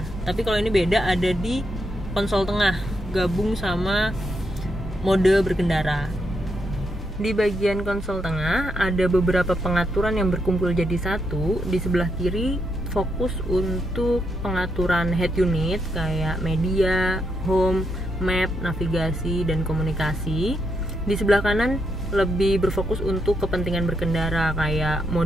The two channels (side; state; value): both; normal; correlation 0.80